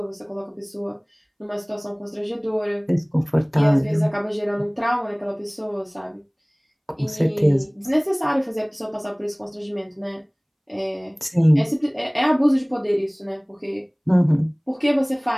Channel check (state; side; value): identical; both; correlation 1.00